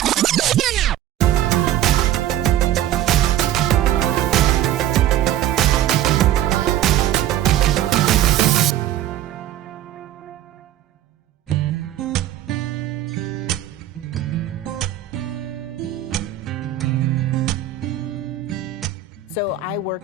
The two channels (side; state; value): left; quieter; 12.0 dB